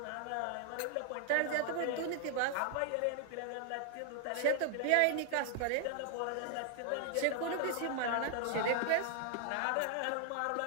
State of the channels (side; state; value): both; different; correlation 0.00